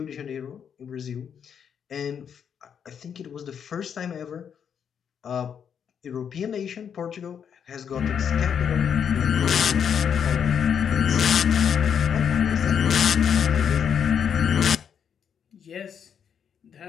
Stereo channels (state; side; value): quieter; right; 7.8 dB